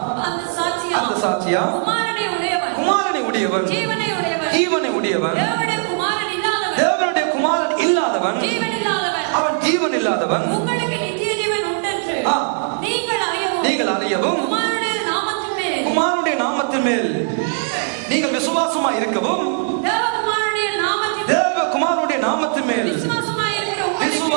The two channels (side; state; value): left; silent; digital silence